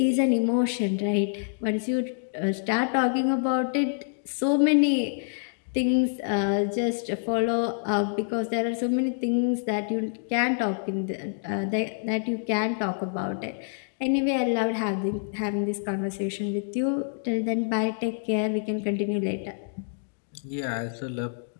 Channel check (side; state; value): right; silent; digital silence